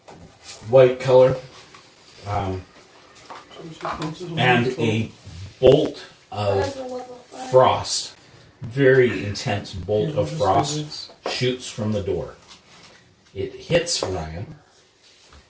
white color, and a bolt of frost, very intense bolt of frost, shoots from the door. It hits Ryan,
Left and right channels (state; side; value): identical; both; correlation 1.00